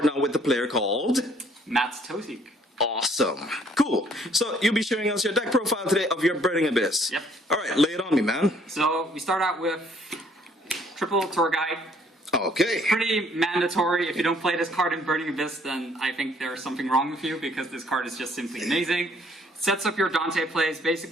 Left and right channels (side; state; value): both; normal; correlation 0.62